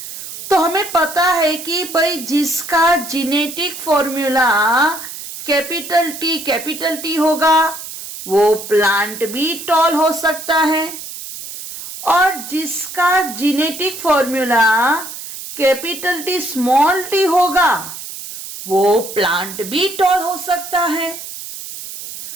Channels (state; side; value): noise; right; hiss, 11 dB below the sound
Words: तो हमें पता है कि भाई जिसका जेनेटिक फॉर्मूला कैपिटल टी होगा वो प्लांट भी टॉल हो सकता है, और जिसका genetic formula capital T small T होगा वो प्लांट भी टॉल हो सकता है।